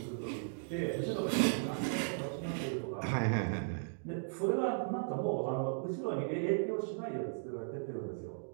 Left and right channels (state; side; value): silent; left; digital silence